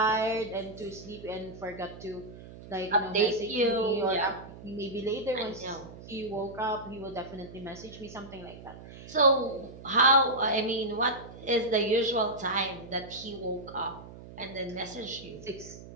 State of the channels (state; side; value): noise; right; hum, 16 dB below the sound